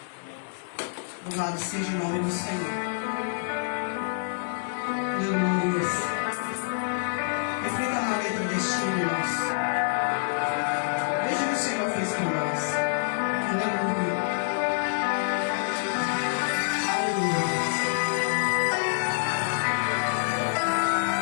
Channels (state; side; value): silent; right; 60 dB below the other